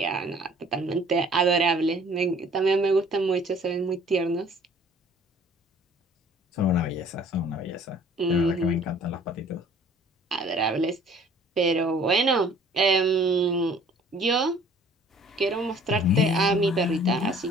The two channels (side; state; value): both; normal; correlation 0.53